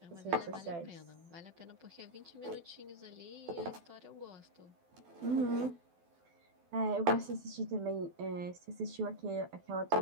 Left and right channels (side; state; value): left; late; 12 ms